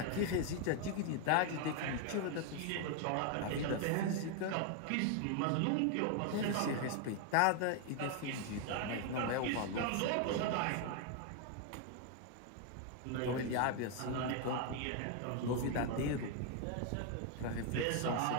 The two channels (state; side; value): different; both; correlation 0.01